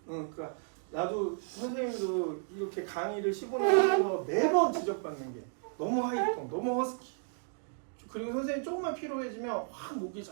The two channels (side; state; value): left; silent; 56 dB below the other